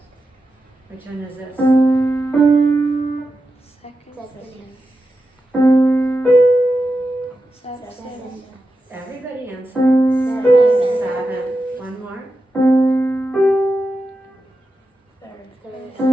Which one is this? Everybody answer. Seven. One more.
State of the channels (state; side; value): normal; both; correlation 0.90